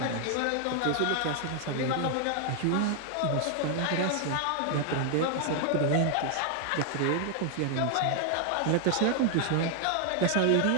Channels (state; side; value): different; both; correlation 0.00